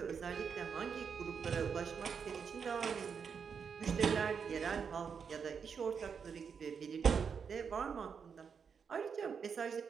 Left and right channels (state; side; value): quieter; left; 6.4 dB